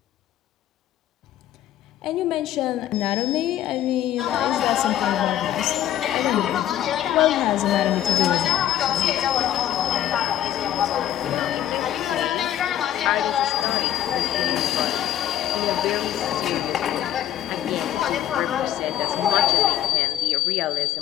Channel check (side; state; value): right; quieter; 11.7 dB